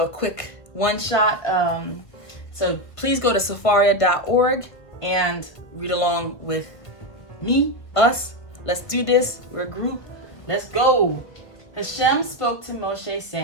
quick one shot. So please go to safaria.org and read along with me, us. Let's do this. We're a group. Let's go. Hashem spoke to Moshe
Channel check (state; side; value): late; right; 1.7 ms